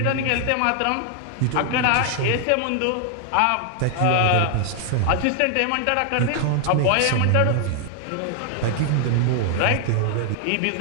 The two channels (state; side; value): different; both; correlation 0.00